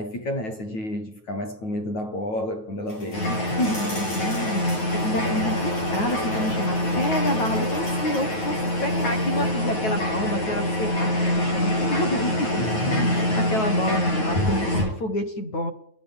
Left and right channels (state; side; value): late; right; 9.3 ms